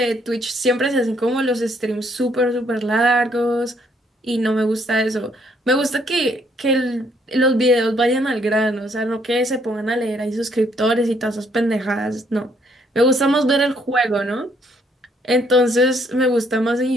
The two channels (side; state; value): both; normal; correlation 0.68